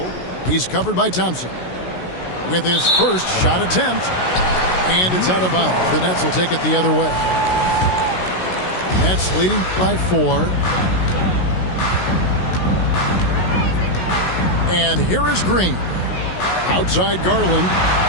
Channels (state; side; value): late; right; 16 ms